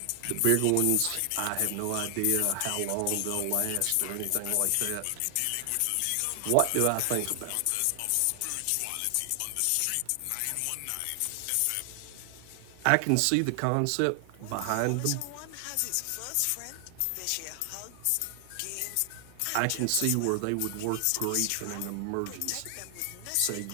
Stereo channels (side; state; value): both; different; correlation 0.00